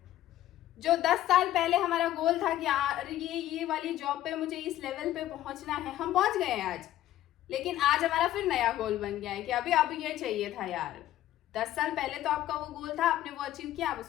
जो 10 साल पहले हमारा गोल था कि यार ये वाली जॉब पे मुझे इस लेवल पे पहुंचना है, हम पहुंच गए हैं आज। लेकिन आज हमारा फिर नया गोल बन गया है कि अभी अब ये चाहिए था यार। 10 साल पहले तो आपका वो गोल था, आपने वो अचीव किया, आप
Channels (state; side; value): quieter; right; 13.5 dB